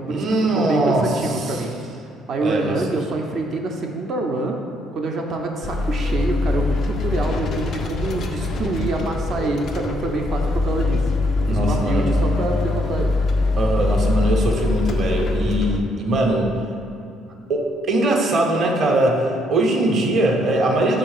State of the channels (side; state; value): both; normal; correlation 0.72